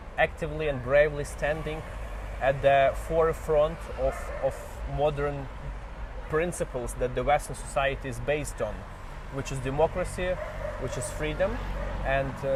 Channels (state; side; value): identical; both; correlation 1.00